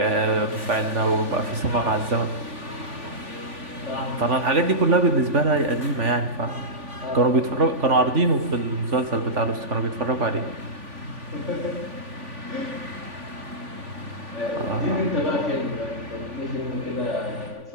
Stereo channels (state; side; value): late; left; 3.5 ms